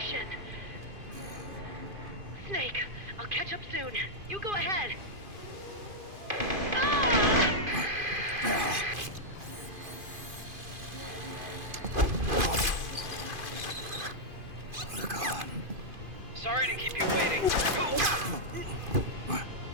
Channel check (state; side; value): late; left; 2.5 ms